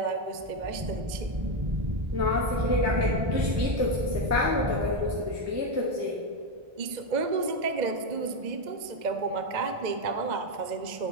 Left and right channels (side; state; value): left; late; 2.0 ms